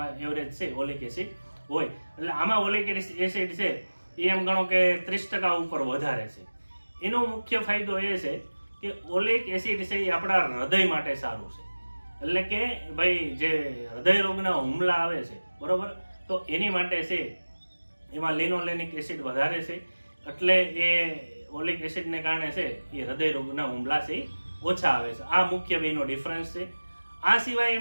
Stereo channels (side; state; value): both; inverted; correlation -1.00